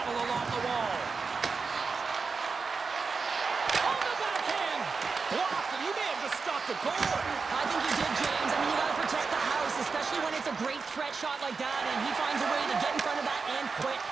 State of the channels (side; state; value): left; quieter; 4.8 dB